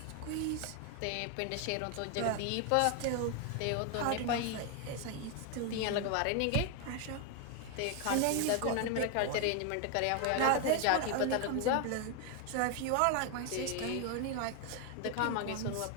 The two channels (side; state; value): both; different; correlation 0.01